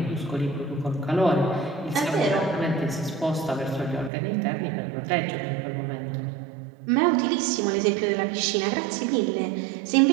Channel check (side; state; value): left; drops out; at 4.1 s